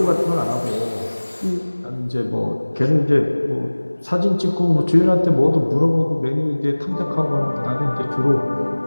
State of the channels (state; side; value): inverted; both; correlation -1.00